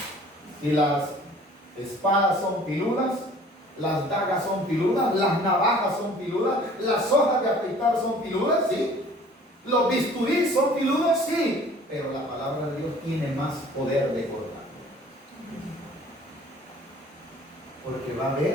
Si las espadas son filudas, las dagas son filudas, las navajas son filudas, las hojas de afeitar son filudas, sí. Los bisturís son filudos, sí. Pero la palabra de Dios tiene más poder de cortar. Porque va a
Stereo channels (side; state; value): both; normal; correlation 0.51